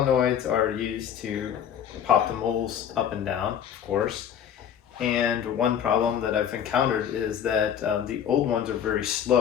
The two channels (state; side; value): quieter; right; 9.0 dB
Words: are used to pop the moles up and down, of course. And one problem that I've encountered is that the old ones are very